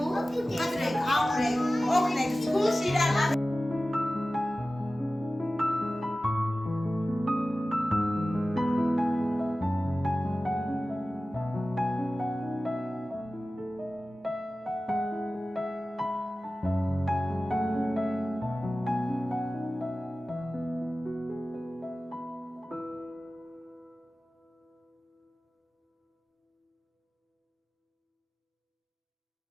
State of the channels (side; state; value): both; normal; correlation 0.96